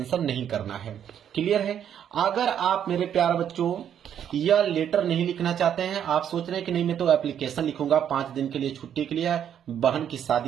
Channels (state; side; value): quieter; left; 9.3 dB